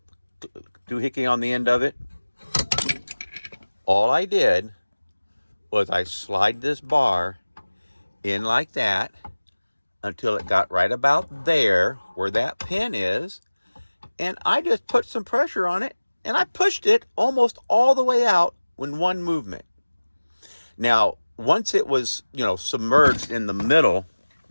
doohickey on the end of it? All I did was I slide this bar in like that until it got right about there where that pin is, and I just put some pressure on it and I pushed it almost all the way out in one movement. Now, once it was, submerged in the middle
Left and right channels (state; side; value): inverted; both; correlation -1.00